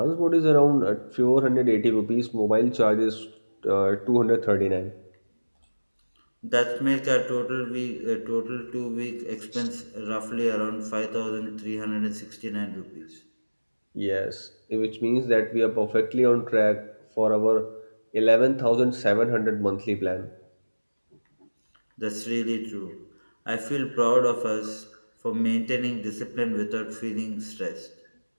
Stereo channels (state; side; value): inverted; both; correlation -1.00